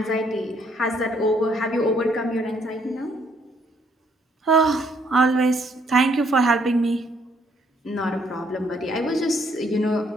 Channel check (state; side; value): normal; both; correlation 0.68